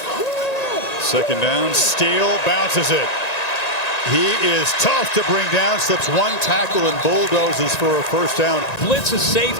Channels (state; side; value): late; right; 1.9 ms